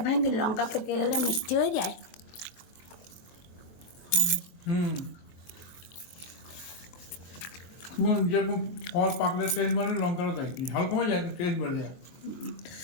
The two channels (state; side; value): late; right; 23 ms